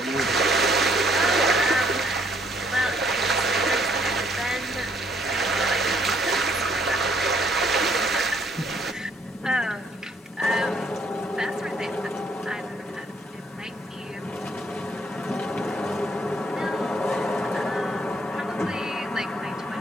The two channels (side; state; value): both; normal; correlation 0.66